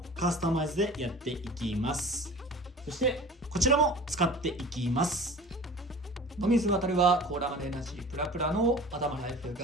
カスタマイズでやっていきます。そしてこちらも使っていきます。野水渡はコーラマネエナジープラプラの頭ライフ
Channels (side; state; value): both; normal; correlation 0.40